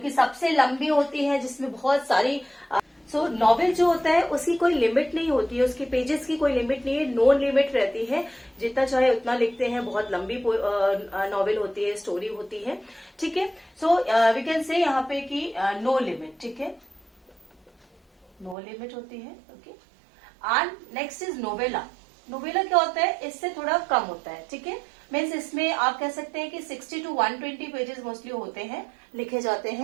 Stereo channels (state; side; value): drops out; left; at 18.6 s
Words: सबसे लंबी होती है, जिसमें बहुत सारी सो नॉवेल जो होता है उसकी कोई लिमिट नहीं होती है, उसकी पेजेस की कोई लिमिट नहीं है, नो लिमिट रहती है, जितना चाहे उतना लिखते हैं। बहुत लंबी नॉवेल होती है, स्टोरी होती है, ठीक है। सो वी कैन से यहाँ पे कि नो लिमिट, ठीक है, नो लिमिट होती है, okay. And next is novella. Novella क्या होता है? इससे थोड़ा कम होता है, ठीक है। मीन्स इसमें आप कह सकते हैं कि 60 to 120 पेजेस मोस्टली होते हैं, लिखे जाते